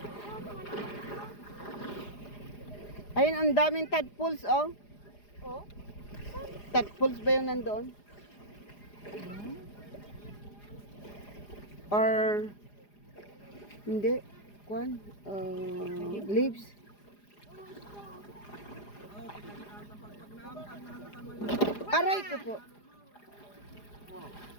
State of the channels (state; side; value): late; right; 4.9 ms